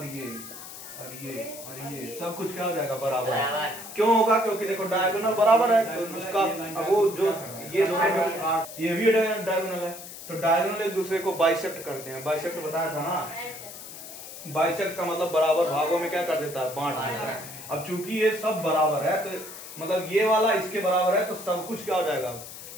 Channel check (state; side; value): noise; left; hiss, 13 dB below the sound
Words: ये और ये और ये सब कुछ क्या हो जाएगा, बराबर। क्यों होगा? क्योंकि देखो डायगोनल बराबर है, तो उसका अब वो जो ये दोनों जो ये भी डायगोनल है, तो डायगोनल एक दूसरे को बाइसेक्ट करते हैं। बाइसेक्ट बताया था ना, बाइसेक्ट का मतलब बराबर भागों में क्या कर देता है, बांट देता है। अब चूंकि ये सब बराबर है, तो मतलब ये वाला इसके बराबर है, तो सब कुछ क्या हो जाएगा,